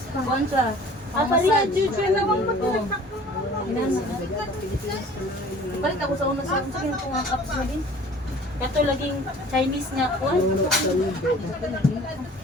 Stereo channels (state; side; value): normal; both; correlation 0.48